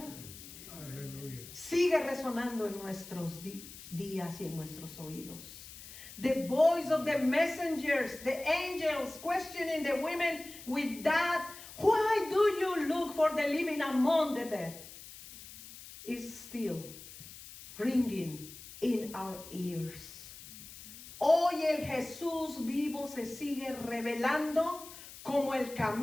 Aleluya. Sigue resonando en nuestros días y en nuestros oídos. The voice of the messengers, the angels questioning the women with that, why do you look for the living among the dead? Is still ringing in our ears. Hoy el Jesús vivo se sigue revelando como el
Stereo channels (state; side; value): noise; left; hiss, 15 dB below the sound